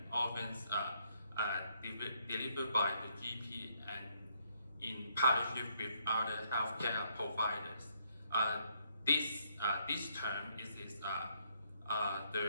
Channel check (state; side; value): inverted; both; correlation -0.71